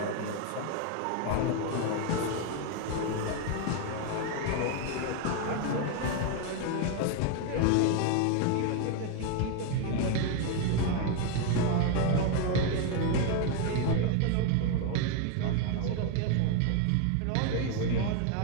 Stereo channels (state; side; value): different; both; correlation 0.01